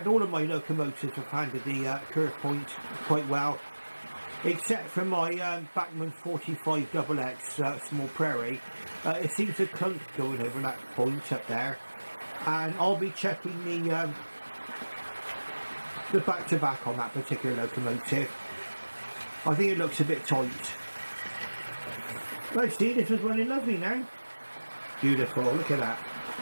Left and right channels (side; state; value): both; inverted; correlation -1.00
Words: all of my locomotives have handled the curve points quite well, except for my Bachmann 45 XX Small Prairie. It seems to clunk going over that point up there, and I'll be checking the back-to-back on that particular locomotive. I think it looks a bit tight. Right, see, this was running lovely now. Beautiful, look at that.